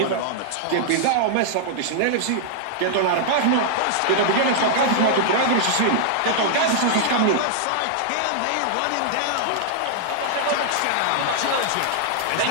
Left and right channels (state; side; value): different; both; correlation -0.01